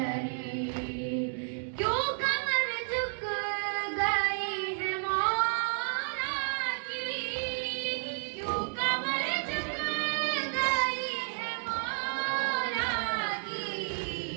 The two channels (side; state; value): left; silent; digital silence